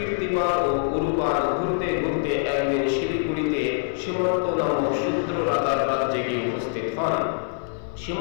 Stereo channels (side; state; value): right; silent; 57 dB below the other